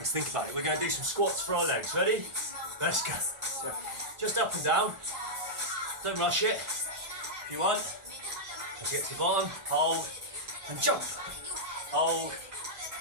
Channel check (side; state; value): left; late; 1.4 ms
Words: think about it. We're going to do some squats for our legs. Ready? Let's go. So just up and down. Don't rush it. If you want, let's get to the bottom. Hold and jump. Hold